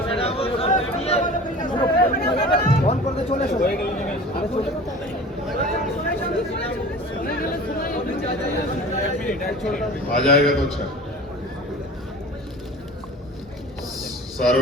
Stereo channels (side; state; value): both; normal; correlation 0.39